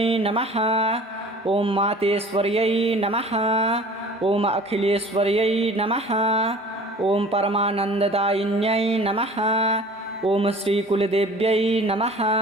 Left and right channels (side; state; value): both; normal; correlation 0.45